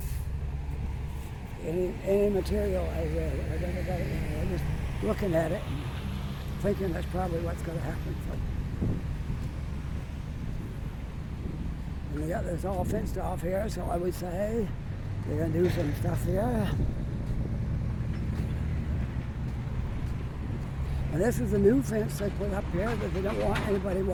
material I read. I never got it. I was just looking at it and thinking that's probably what's going to happen. So. And they got this all fenced off here, so I would say they're going to do some stuff here. And this is a new fence they put up here, but they don't want anybody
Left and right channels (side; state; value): both; identical; correlation 1.00